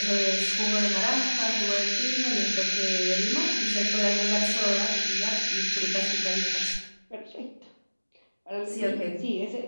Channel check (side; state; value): both; inverted; correlation -1.00